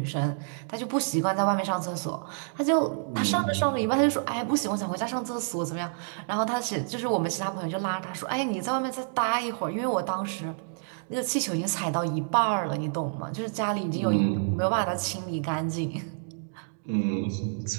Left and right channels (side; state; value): left; silent; digital silence